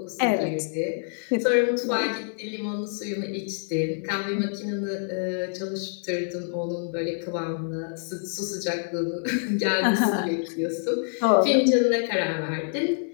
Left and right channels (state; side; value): silent; right; 56 dB below the other